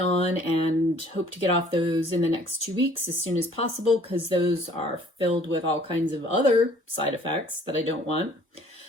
and hope to get off those in the next 2 weeks as soon as possible, because those are filled with all kinds of other side effects that I don't want.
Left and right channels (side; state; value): both; normal; correlation 0.56